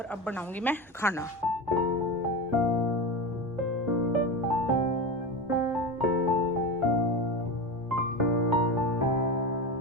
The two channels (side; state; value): both; normal; correlation 0.22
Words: अब बनाऊंगी मैं खाना।